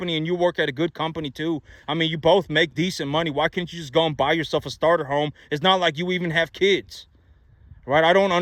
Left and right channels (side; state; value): both; identical; correlation 1.00